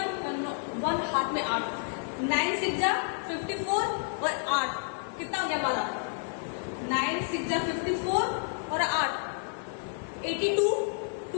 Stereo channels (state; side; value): silent; right; 58 dB below the other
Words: 1 हाथ में 8, 9 6 जा 54 और 8 कितना हो गया हमारा 9 6 जा 54 और 8 82,